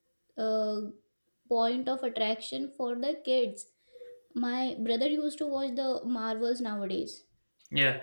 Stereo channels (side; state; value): both; inverted; correlation -1.00